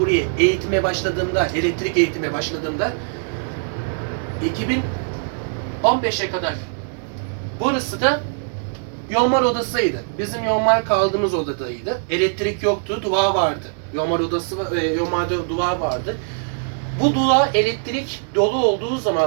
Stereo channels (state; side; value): silent; left; digital silence